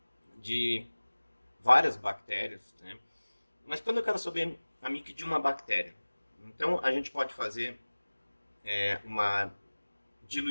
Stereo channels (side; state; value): both; inverted; correlation -1.00